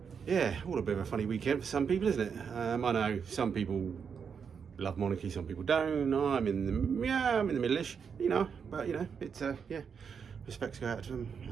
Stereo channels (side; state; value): left; quieter; 6.6 dB